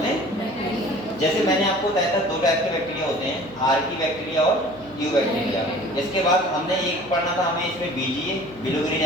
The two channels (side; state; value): right; noise; hum, 23 dB below the sound